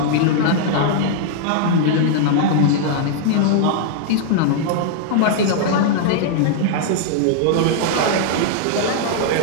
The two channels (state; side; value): different; both; correlation -0.01